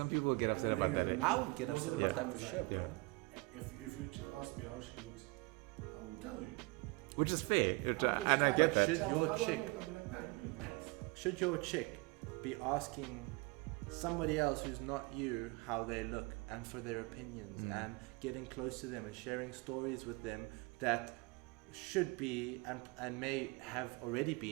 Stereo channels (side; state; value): left; quieter; 25.8 dB